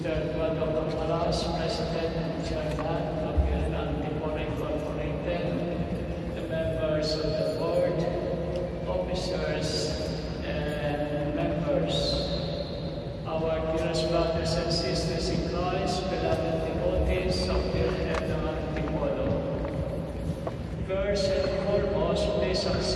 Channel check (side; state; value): both; identical; correlation 1.00